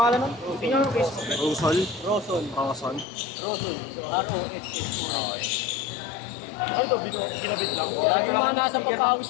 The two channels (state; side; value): drops out; right; at 3.1 s